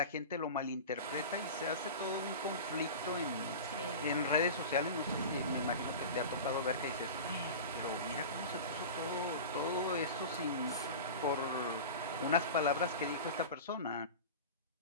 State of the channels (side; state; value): both; inverted; correlation -0.31